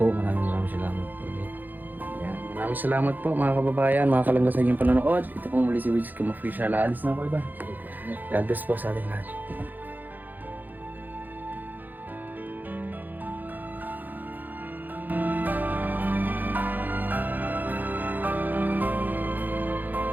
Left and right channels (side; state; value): left; late; 0.086 ms